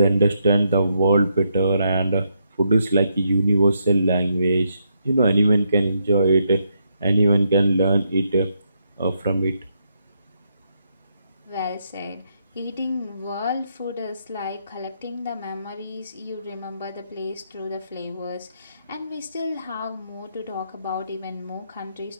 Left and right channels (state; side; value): inverted; both; correlation -0.78